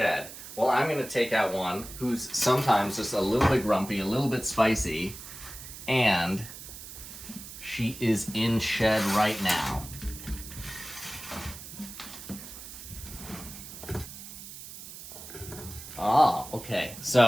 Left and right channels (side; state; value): right; noise; hiss, 13 dB below the sound